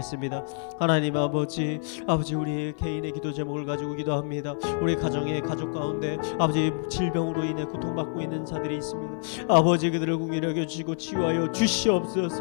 하나님 아버지, 아버지 우리 개인의 기도 제목을 가지고 기도합니다. 우리 가정의 가족 가운데 아버지 질병으로 인해 고통받고 있는 자들이 있습니다. 아버지 그들을 긍휼히 여겨주시고 치유하여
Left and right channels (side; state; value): right; silent; 60 dB below the other